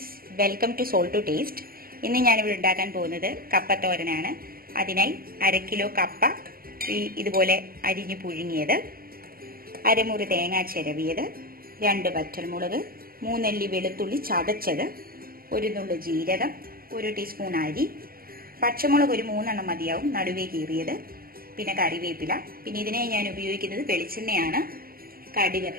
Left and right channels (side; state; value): left; late; 0.43 ms